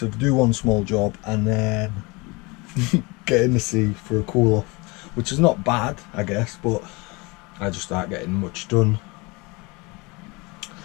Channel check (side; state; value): right; quieter; 26.4 dB